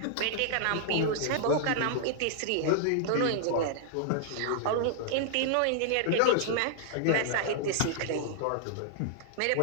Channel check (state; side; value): different; both; correlation -0.01